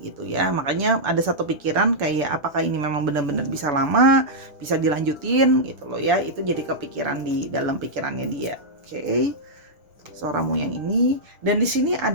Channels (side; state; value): left; late; 6.4 ms